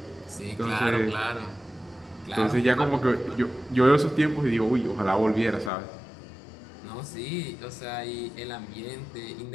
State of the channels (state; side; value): drops out; right; at 5.7 s